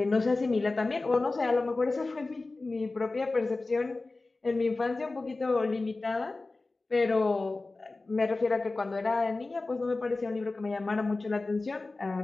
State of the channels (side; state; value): right; quieter; 3.4 dB